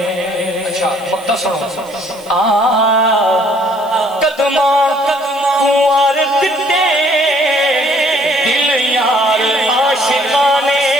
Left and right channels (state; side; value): noise; right; hiss, 24 dB below the sound